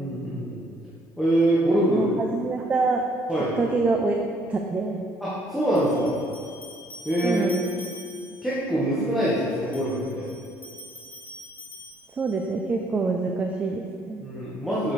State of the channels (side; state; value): both; normal; correlation 0.66